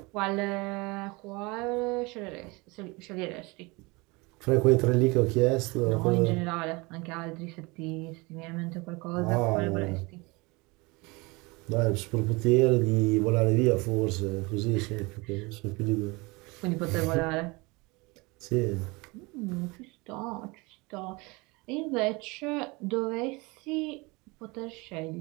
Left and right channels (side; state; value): left; quieter; 25.5 dB